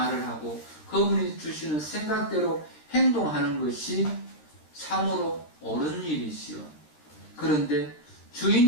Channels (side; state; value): right; late; 13 ms